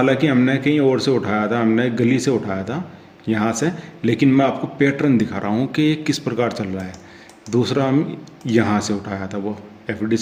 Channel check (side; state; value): both; identical; correlation 1.00